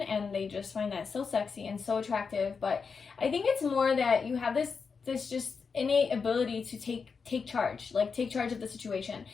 and they just find that so sexy and so attractive. But I think it's more that you have this just innate ability to take charge, like take charge of the situation.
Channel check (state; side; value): quieter; right; 5.4 dB